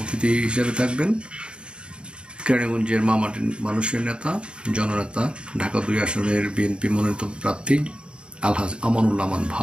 অতিথি হিসেবে থাকবেন কেরানীগঞ্জের মামাটির মানুষের নেতা, জননেতা, ঢাকা ২ আসনের বিএনপি মনোনীত প্রার্থী আলহাজ আমানুল্লাহ আমান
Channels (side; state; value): left; late; 0.053 ms